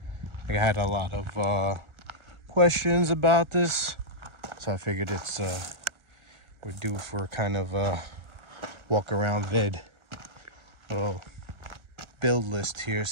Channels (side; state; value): left; late; 1.3 ms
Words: I had a lot of questions about this, so I figured it's we're due for kind of a walk around vid, little build list here.